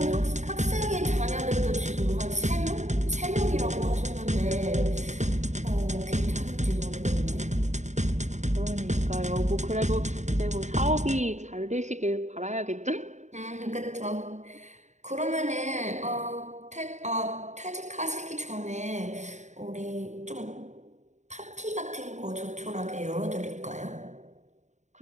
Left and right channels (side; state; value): left; late; 0.34 ms